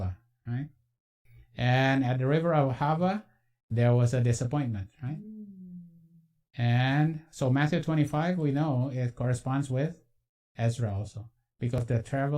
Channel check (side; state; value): both; identical; correlation 1.00